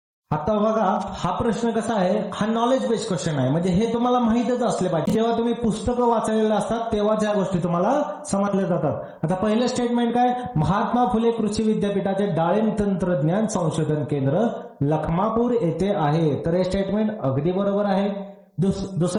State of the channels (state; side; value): identical; both; correlation 1.00